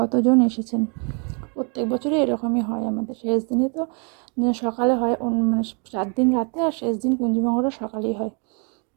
এসেছেন। প্রত্যেক বছরই এরকমই হয় আমাদের, শেষ দিনে তো সকালে হয়, মানে 4 দিন রাতে আর শেষ দিন কুঞ্জমঙ্গলটা সকালেই হয়।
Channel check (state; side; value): quieter; left; 36.7 dB